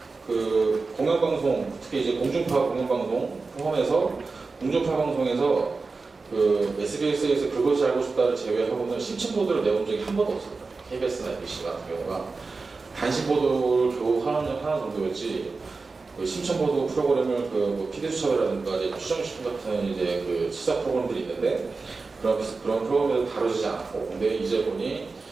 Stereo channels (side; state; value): left; quieter; 4.1 dB